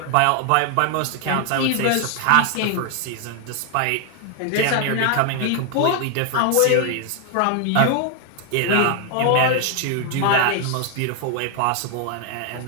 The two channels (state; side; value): different; both; correlation 0.00